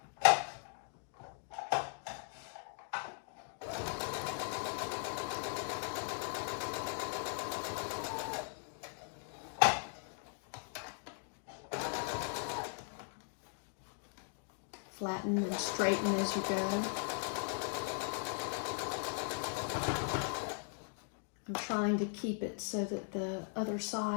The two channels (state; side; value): silent; right; 52 dB below the other